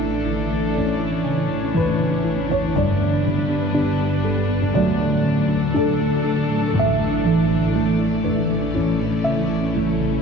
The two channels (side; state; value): both; normal; correlation 0.53